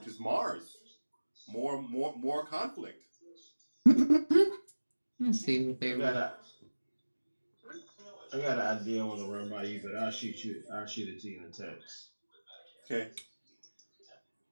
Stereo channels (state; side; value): inverted; both; correlation -1.00